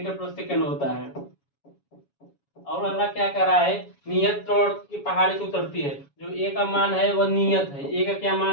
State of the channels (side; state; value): right; late; 7.1 ms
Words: प्रति सेकंड होता है। और अगला क्या कर रहा है, नियत त्वरण की पहाड़ी से उतरती है, जो ए का मान है वह नियत है, ए का क्या